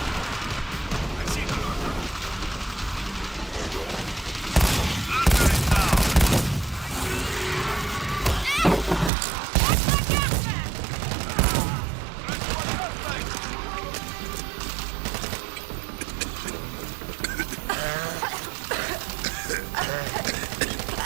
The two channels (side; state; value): left; drops out; at 9.1 s